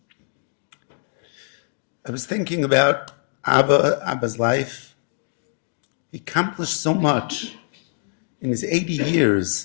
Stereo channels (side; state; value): right; silent; 63 dB below the other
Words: I was thinking about Abba's life. He accomplished so much in his 80